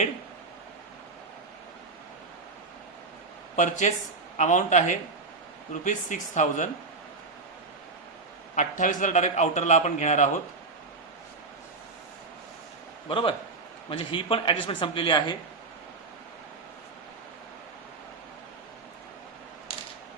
परचेस अमाऊंट आहे ₹6,000. 28,000 डायरेक्ट आउटरला आपण घेणार आहोत. बरोबर. म्हणजे ही पण ऍडजस्टमेंट संपलेली आहे.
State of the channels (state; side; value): quieter; left; 3.9 dB